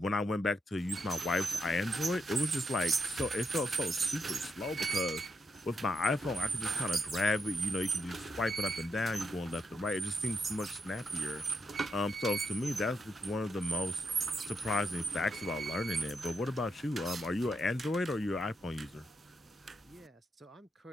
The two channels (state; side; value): normal; both; correlation 0.82